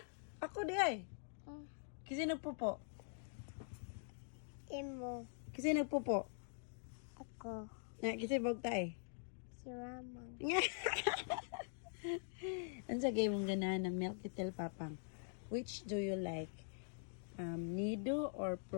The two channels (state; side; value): silent; right; digital silence